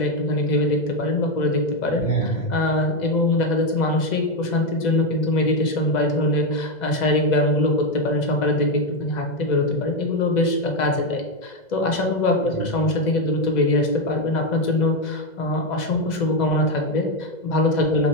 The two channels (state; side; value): late; right; 2.0 ms